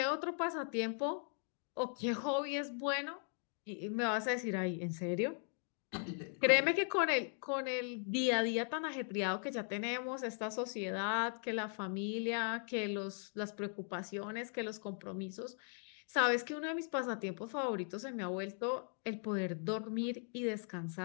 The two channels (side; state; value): right; silent; 52 dB below the other